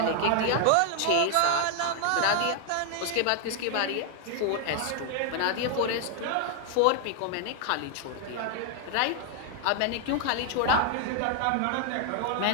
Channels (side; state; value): both; different; correlation 0.00